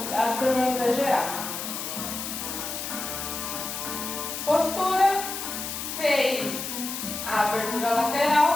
para não exagerar. Postura, fez a abertura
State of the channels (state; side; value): noise; left; hiss, 5 dB below the sound